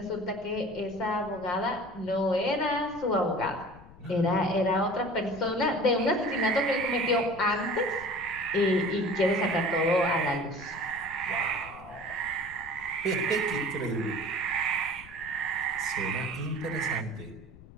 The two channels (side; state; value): left; noise; rumble, 20 dB below the sound